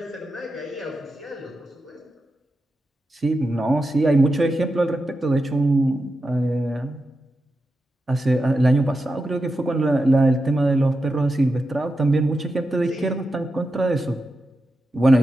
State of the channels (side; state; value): both; normal; correlation 0.89